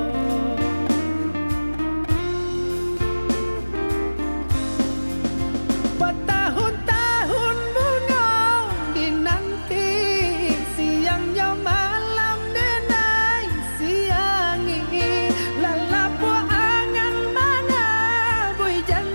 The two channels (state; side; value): inverted; both; correlation -1.00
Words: Bertahun-tahun bunga dinanti, siangnya malam denai siangi. Lalapu angan mana bui